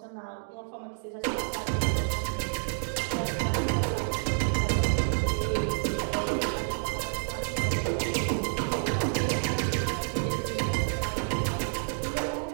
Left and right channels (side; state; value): left; silent; digital silence